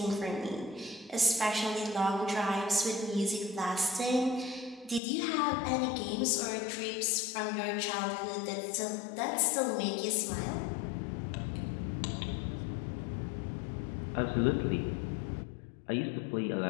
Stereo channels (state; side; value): drops out; right; at 5.0 s